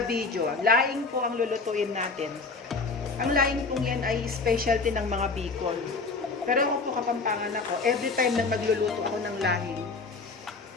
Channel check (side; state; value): right; quieter; 4.1 dB